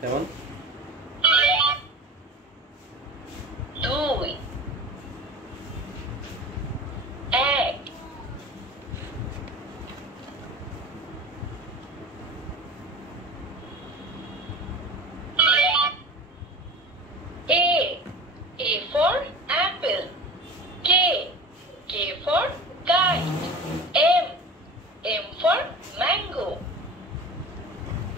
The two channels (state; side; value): normal; both; correlation 0.35